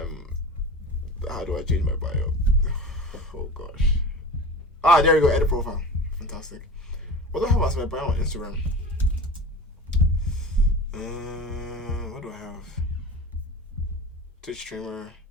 How do I change my bio? Oh gosh. There you go. Edit profile. Fantastic. What do I have as my bio on Instagram? What do I have? Twitch streamer,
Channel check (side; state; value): both; normal; correlation 0.33